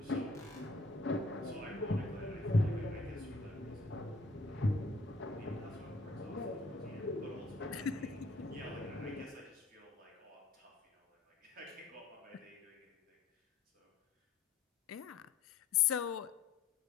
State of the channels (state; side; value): quieter; right; 3.2 dB